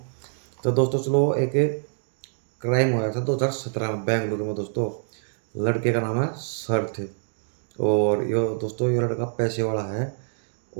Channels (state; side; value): silent; left; digital silence